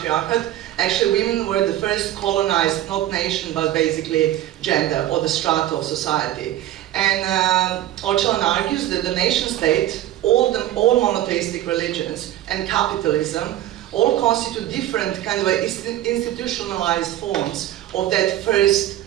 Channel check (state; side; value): quieter; left; 13.5 dB